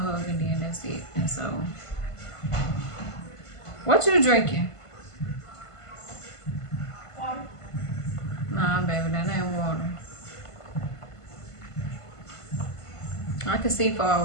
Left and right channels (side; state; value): right; late; 1.5 ms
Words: to hug and then that's it. And so, what you drinking? Water. Nah, baby, that ain't water. I can see far